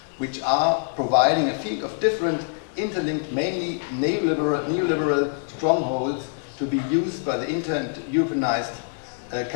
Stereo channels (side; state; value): right; silent; 62 dB below the other